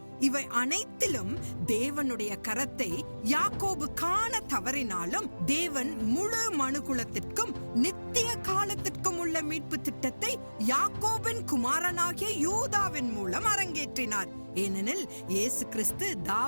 இவை அனைத்திலும் தேவனுடைய கரத்தை யாக்கோபு காண தவறினாலும் தேவன் முழு மனுகுலத்திற்கும் நித்திய காலத்திற்கும் உள்ள மீட்பு திட்டத்தை யாக்கோபின் குமாரனாகிய யூதாவின் மூலம் அரங்கேற்றினார். ஏனெனில் இயேசு கிறிஸ்து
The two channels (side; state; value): both; inverted; correlation -1.00